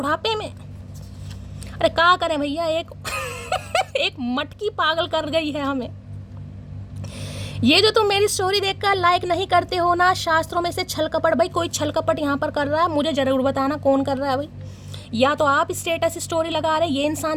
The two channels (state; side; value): identical; both; correlation 1.00